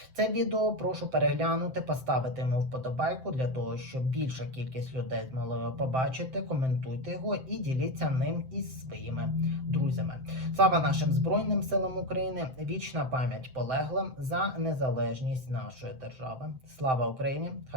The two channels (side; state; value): left; late; 7.7 ms